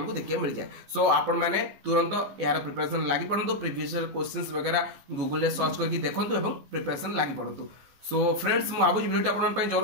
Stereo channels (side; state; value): left; late; 15 ms